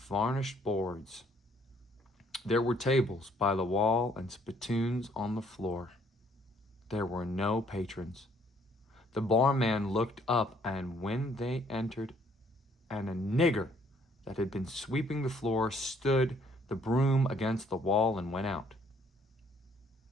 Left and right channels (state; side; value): normal; both; correlation 0.63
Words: boards. There were tables by the wall and spittoons on the floor. There were no patrons. The barman looked up, and when they entered, and a nigger that had been sweeping the floor stood the broom against the wall and went out.